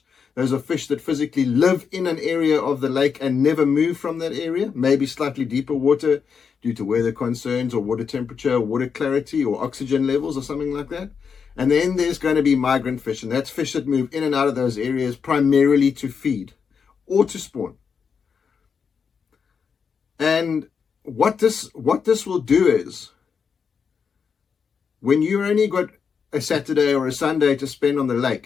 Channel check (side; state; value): right; quieter; 6.2 dB